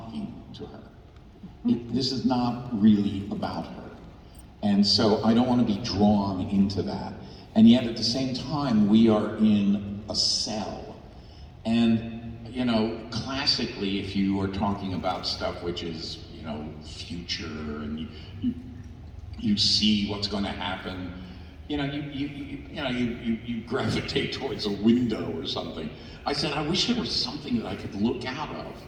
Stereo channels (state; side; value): identical; both; correlation 1.00